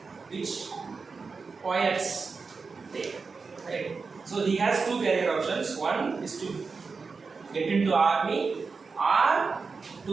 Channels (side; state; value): left; quieter; 4.7 dB